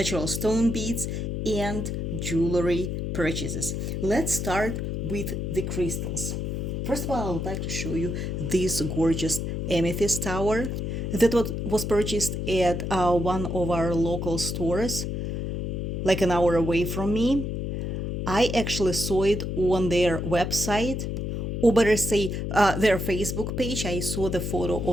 stone beads, and jewelry purchases. Let's start with the crystals. First of all, I would like to show you this gorgeous amethyst tower that was purchased at one of our local stores, like an hour away from me. I actually saw it on their website, or better say, their Facebook page. I saw the photo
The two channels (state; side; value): noise; left; hum, 2 dB below the sound